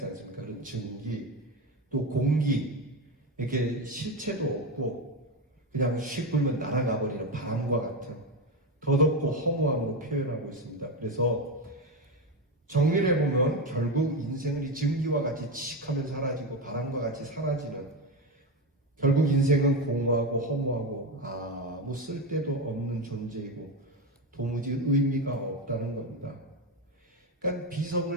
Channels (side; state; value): both; normal; correlation 0.15